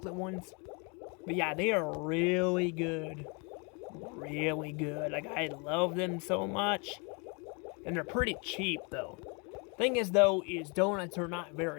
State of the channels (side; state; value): right; quieter; 32.6 dB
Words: ones. But yeah, they are really good. Really good. I love them so much. And they're pretty cheap, though. Thing is, though, is donuts are not